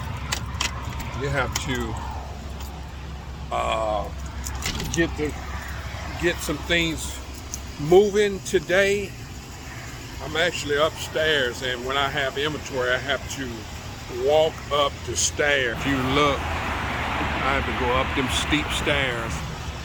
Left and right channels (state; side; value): identical; both; correlation 1.00